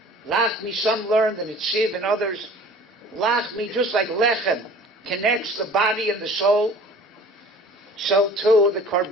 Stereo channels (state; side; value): normal; both; correlation 0.46